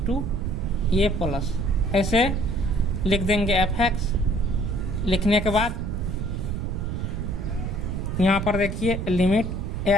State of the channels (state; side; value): noise; right; rumble, 3 dB below the sound